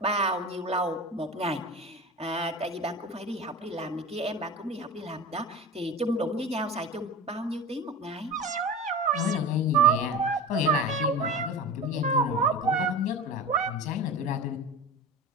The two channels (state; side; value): normal; both; correlation 0.31